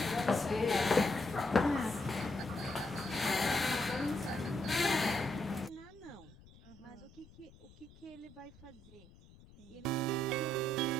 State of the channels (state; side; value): noise; left; rumble, 23 dB below the sound